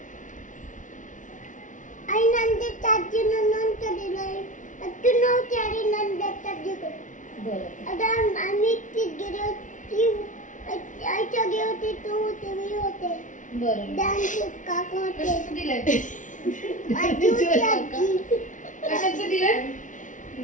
आई नंदेच्या आजीनं लोणचं दिलंय. तू नव्हती आणि नंदेच्या आजीकडे. बरं. आता आम्ही ती गेली होती. आईच्या गेली होती तू होते मी होते. बरं. डान्स काका होते. कशाचं दिलंय? आजी होती आजी. कशाचं दिलंय?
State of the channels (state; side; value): late; right; 0.37 ms